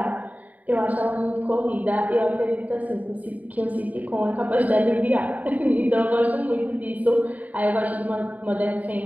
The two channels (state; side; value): late; left; 0.074 ms